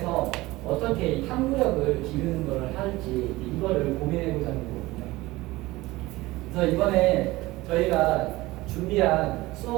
어떻게 이 탐구력을 기르는 것을 할지 이거를 고민해보자는 거거든요. 그래서 이번에 저희가 준비한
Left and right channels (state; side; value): quieter; left; 19.5 dB